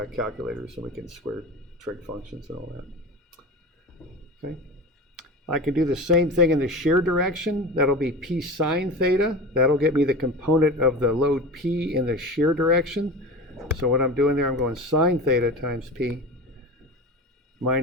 calculators and we can square trig functions and all that. Okay. I can do the same thing in the shear direction. That'll be P sine theta. That'll get me the component of the load P in the shear direction. So what I'm doing there, I'm going sine theta times P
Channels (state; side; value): normal; both; correlation 0.31